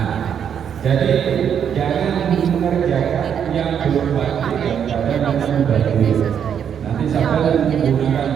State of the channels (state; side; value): quieter; left; 8.3 dB